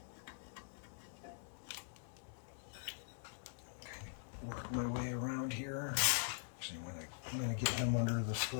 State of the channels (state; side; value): silent; right; digital silence